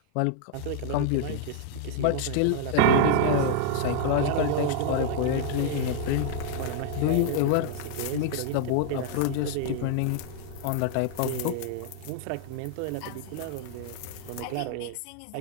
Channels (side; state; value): both; different; correlation -0.01